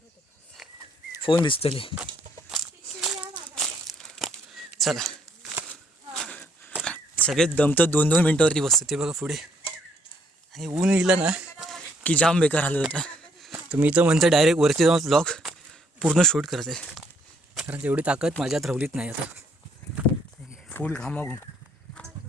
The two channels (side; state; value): both; normal; correlation 0.69